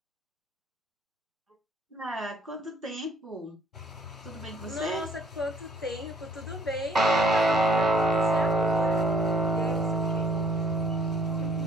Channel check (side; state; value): both; normal; correlation 0.61